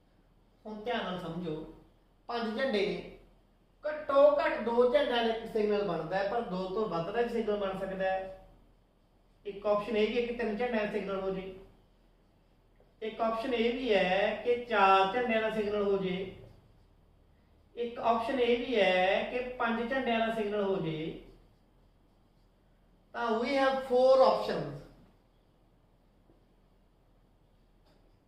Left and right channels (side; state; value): both; identical; correlation 1.00